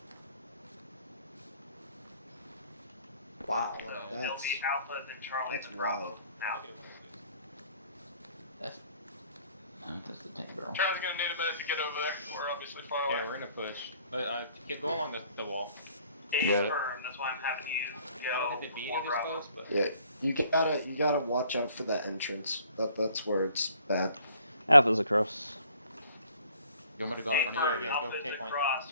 Wow, So it'll be Alpha, then Charlie, that's then Bravo. wild. Now. That's the tank barrel. Charlie's gonna need a minute to get over there. We're obviously far away. Yeah, we're gonna push. Go along the wall. Yeah. Firm, that's why I'm having you go Hit the B before this Bravo. close, but Yeah, you gotta watch out for that entrance. That's where it's bad. Alpha's across. You want me to go in front of you? Yeah, Alpha go is take point.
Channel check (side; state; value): both; inverted; correlation -0.59